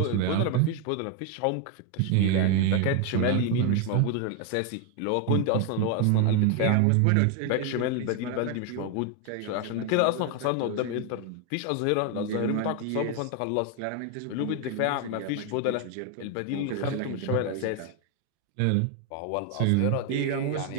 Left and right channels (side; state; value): both; different; correlation 0.01